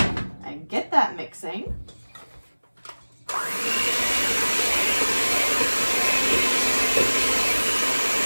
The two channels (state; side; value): inverted; both; correlation -1.00